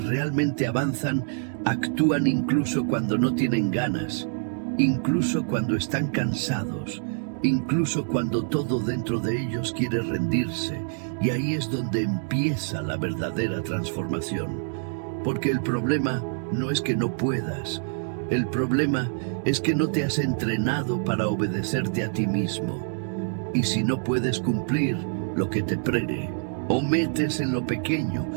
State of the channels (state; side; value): silent; left; digital silence